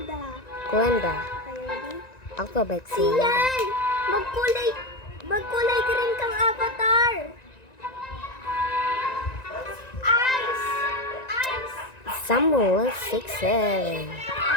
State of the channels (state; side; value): late; right; 1.9 ms